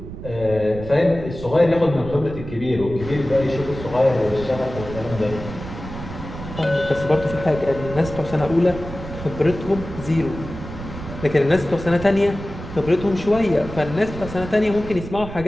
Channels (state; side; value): noise; right; rumble, 11 dB below the sound